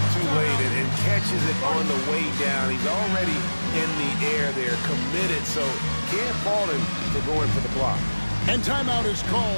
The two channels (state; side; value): inverted; both; correlation -1.00